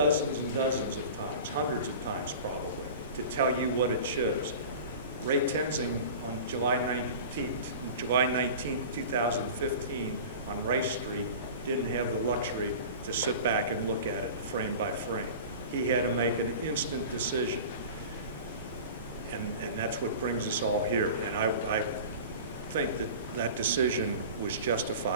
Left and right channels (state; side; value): inverted; both; correlation -0.37